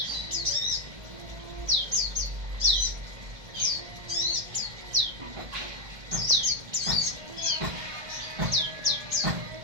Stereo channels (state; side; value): late; left; 1.8 ms